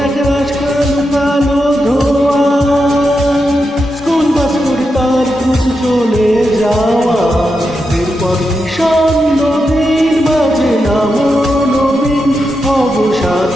এক রাজকাল কালো ধোয়া স্কুল বাস করে তার খুঁজ চলে যাওয়া এরপর ভীষণ নদীর মাঝে নামো নবীন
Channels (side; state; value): both; normal; correlation 0.87